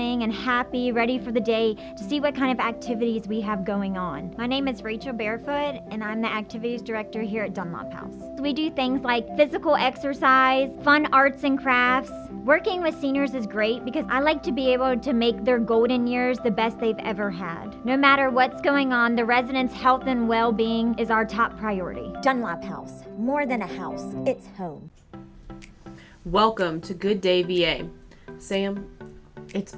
and happy, ready for the day to see what kind of activities we have going on. My name is Rachel Barefoot, and I'm the activities director here at Dunlop House. We do things like physical exercise, fun arts and crafts. Working with seniors is great because I like to be able to make their golden years the best they've ever had. No matter what's going on, the residents' health and well-being is our top priority. Dunlop House, more than a house, it's home. Welcome to Good Day VA. Sam, it's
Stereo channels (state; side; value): identical; both; correlation 1.00